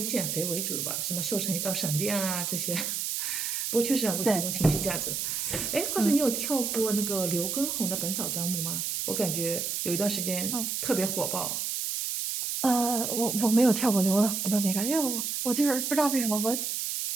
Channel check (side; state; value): right; noise; hiss, 2 dB below the sound